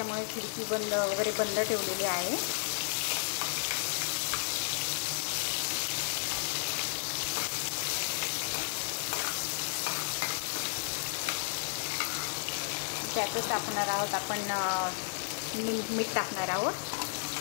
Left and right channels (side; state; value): right; silent; 56 dB below the other